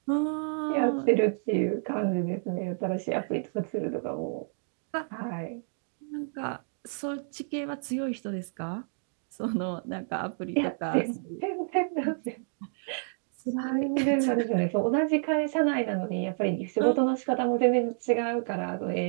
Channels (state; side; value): silent; left; digital silence